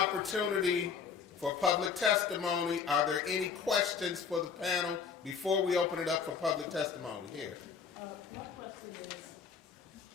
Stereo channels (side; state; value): right; quieter; 6.2 dB